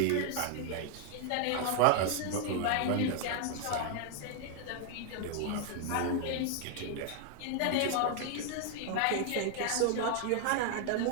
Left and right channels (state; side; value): different; both; correlation 0.00